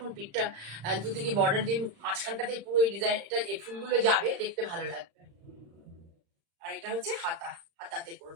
পিঠটা দুদিকে বর্ডার দিয়ে মাঝখানটাতে পুরো এই ডিজাইন, এটা এই ফুলগুলো যাবে, দেখতে ভালো লাগবে। আর এটা হচ্ছে হাতা, হাতাতে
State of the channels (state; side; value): late; left; 35 ms